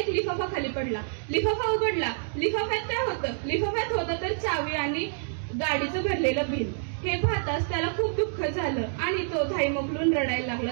लिफाफा खाली पडला. लिफाफा उघडला. लिफाफ्यात होतं तर चावी आणि गाडीचं भरलेलं बिल. हे पाहताच त्याला खूप दुःख झालं आणि तो धाई मोकलून रडायला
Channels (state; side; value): silent; left; digital silence